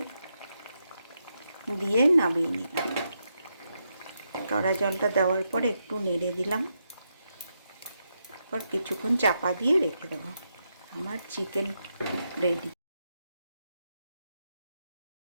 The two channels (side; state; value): both; inverted; correlation -0.83